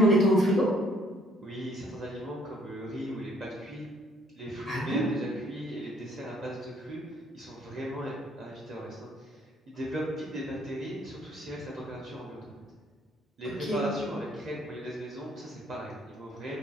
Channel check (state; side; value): normal; both; correlation 0.64